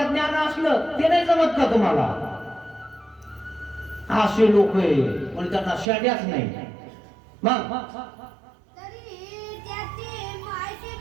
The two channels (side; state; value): left; drops out; at 5.9 s